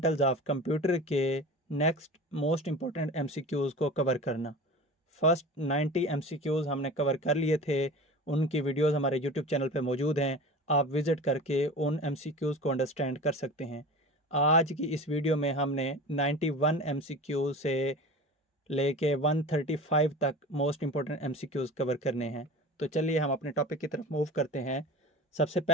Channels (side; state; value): both; normal; correlation 0.35